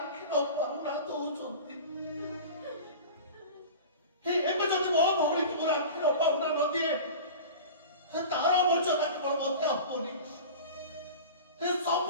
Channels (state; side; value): inverted; both; correlation -0.35